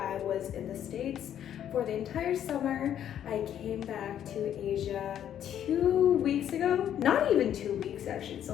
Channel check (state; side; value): quieter; right; 10.2 dB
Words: was in the States for the entire summer. I came back to Asia 2 weeks ago. Not even 2 weeks actually, it's